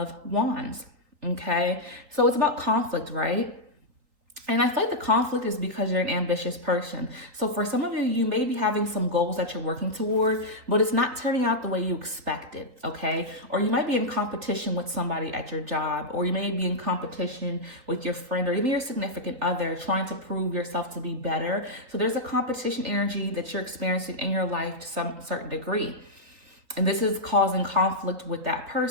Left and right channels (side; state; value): left; late; 3.8 ms